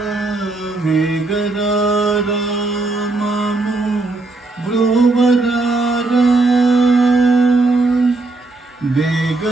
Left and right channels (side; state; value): left; quieter; 3.3 dB